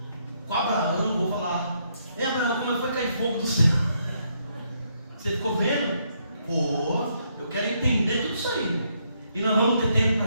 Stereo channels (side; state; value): both; inverted; correlation -0.75